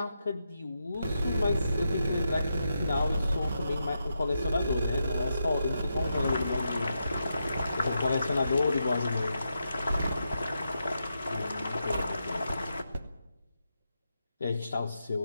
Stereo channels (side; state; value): both; inverted; correlation -0.85